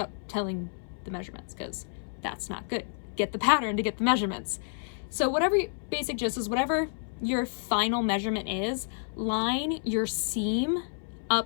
telling the measurements, because that's not good. Get the pattern to get the measurements. So whatever basic gist is, whatever your final measurement is, line your seam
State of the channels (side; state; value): right; silent; 58 dB below the other